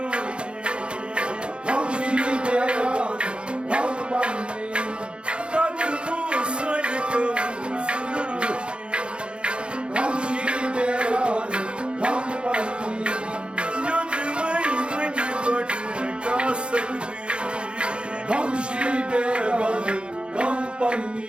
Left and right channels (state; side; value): late; left; 0.056 ms